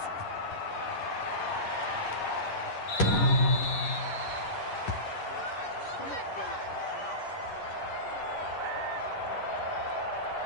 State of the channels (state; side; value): late; right; 11 ms